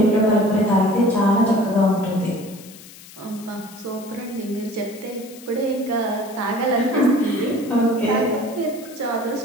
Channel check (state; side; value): noise; left; hiss, 19 dB below the sound